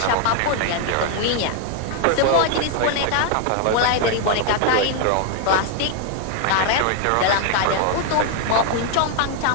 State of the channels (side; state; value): both; different; correlation 0.00